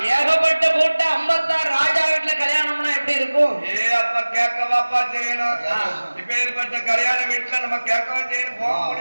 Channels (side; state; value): both; inverted; correlation -1.00